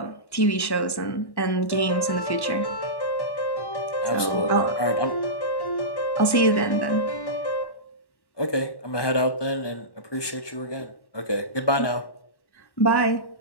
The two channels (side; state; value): right; late; 1.1 ms